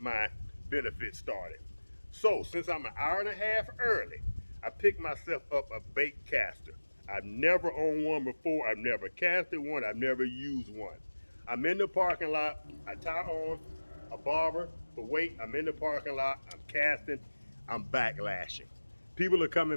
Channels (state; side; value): inverted; both; correlation -1.00